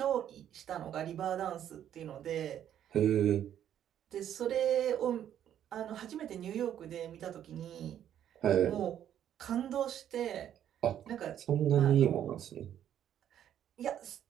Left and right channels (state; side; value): quieter; left; 10.4 dB